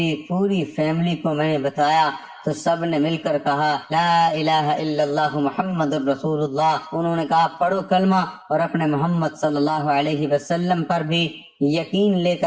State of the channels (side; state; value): both; identical; correlation 1.00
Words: پوری فیملی کو میں نے بتایا تو سب نے مل کر کہا لا الہ الا اللہ محمد الرسول اللہ۔ انہوں نے کہا پڑھو کلمہ اور اپنے محمد صلی اللہ علیہ وسلم پر بھی یقین لے